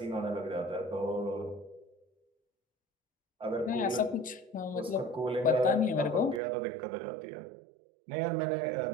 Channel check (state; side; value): drops out; left; at 6.4 s